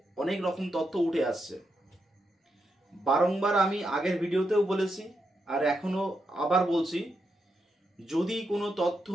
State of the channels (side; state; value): both; normal; correlation 0.84